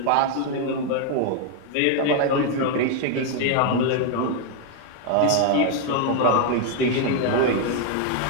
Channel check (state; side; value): different; both; correlation 0.00